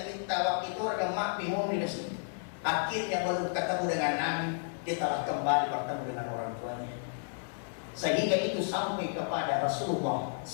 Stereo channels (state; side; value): silent; right; digital silence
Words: waktu itu orang mak bingung di sini. Akhirnya baru ketemu dengan Nabi, dia telah kembali bertemu dengan orang tuanya. Sehingga itu sampai kepada Rasulullah